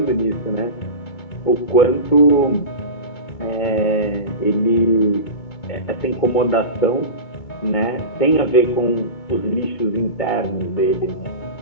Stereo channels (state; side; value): late; right; 2.2 ms